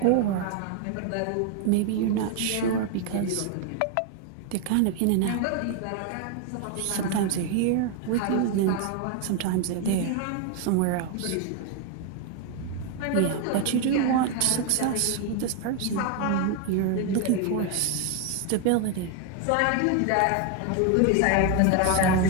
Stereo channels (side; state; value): both; different; correlation 0.01